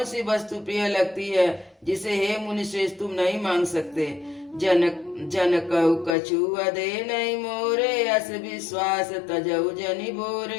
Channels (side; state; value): right; drops out; at 6.2 s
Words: सी वस्तु प्रिय लगती है जिसे हे मुनि श्रेष्ठ तुम नहीं मांग सकते? जन कहु कछु अदे नहीं मोरे, अस विश्वास तजऊ जनि